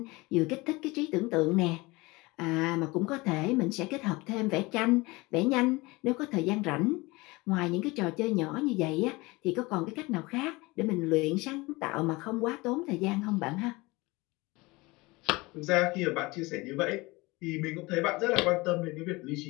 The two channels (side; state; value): right; quieter; 23.0 dB